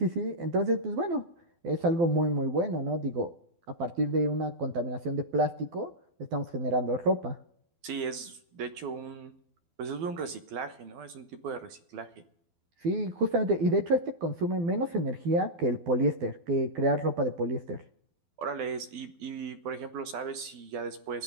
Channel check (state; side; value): late; left; 12 ms